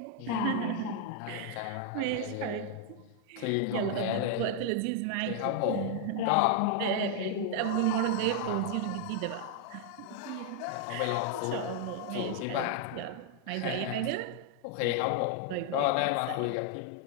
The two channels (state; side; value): different; both; correlation 0.00